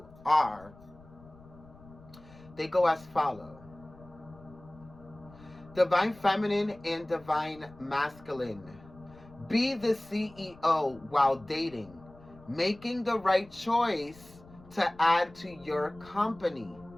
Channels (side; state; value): left; noise; rumble, 22 dB below the sound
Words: they go as follow. Divine feminine and divine masculine. Be the CEO while dating, making the right choice to add to your company.